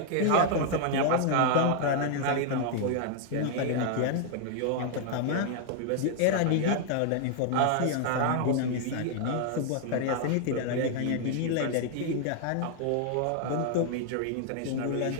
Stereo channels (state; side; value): different; both; correlation 0.00